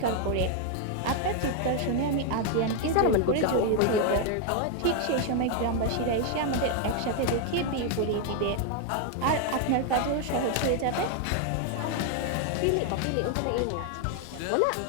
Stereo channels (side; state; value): both; different; correlation 0.00